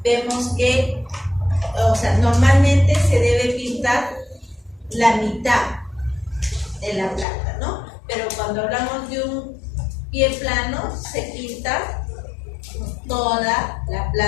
vemos que, normalmente se debe pintar la mitad de la planta, ¿no? Pero cuando hablamos de un pie plano, se pinta toda la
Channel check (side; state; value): right; drops out; at 7.2 s